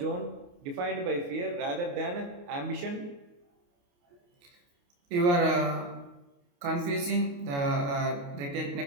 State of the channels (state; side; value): late; left; 28 ms